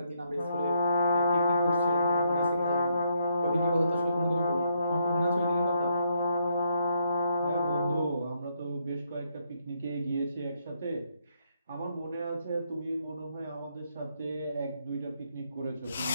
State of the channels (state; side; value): inverted; both; correlation -0.74